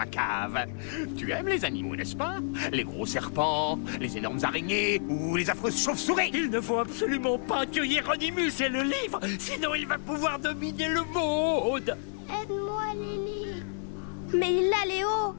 cave. Tu aimes les animaux, n'est-ce pas? Les gros serpents, les énormes araignées ou les affreuses chauves-souris. Il ne faut absolument pas que Hieronymus ait le livre, sinon il va pouvoir dominer le monde. Aide-moi, Lily. Mais il l'a, Léo!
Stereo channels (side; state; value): right; silent; digital silence